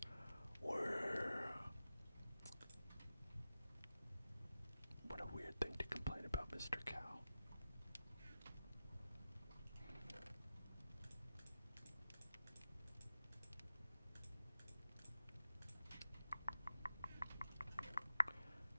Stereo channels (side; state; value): both; inverted; correlation -0.92